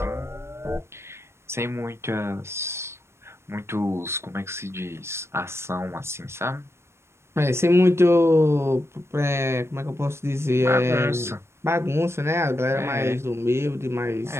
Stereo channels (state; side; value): late; left; 0.13 ms